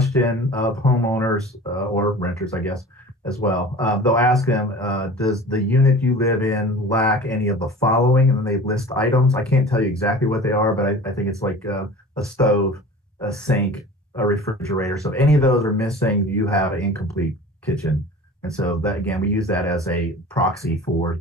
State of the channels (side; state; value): both; normal; correlation 0.40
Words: of homeowners or renters, I guess, as well. They'll ask them, does the unit you live in lack any of the following? And then they list items. I can't tell you exactly what they are, but I think it's like a stove, a sink, a refrigerator. So if any of those are missing, you have an incomplete kitchen. And so that, again, we use that as a proxy for